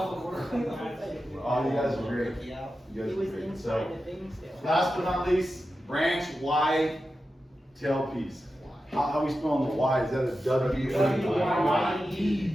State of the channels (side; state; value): both; normal; correlation 0.91